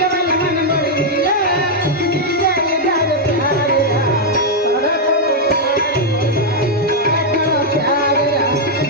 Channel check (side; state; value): both; normal; correlation -0.02